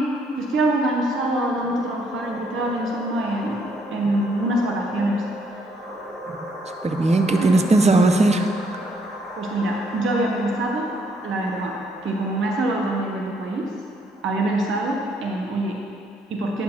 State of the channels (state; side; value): normal; both; correlation 0.71